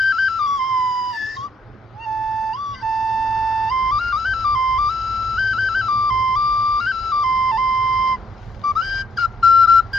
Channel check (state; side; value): normal; both; correlation 0.71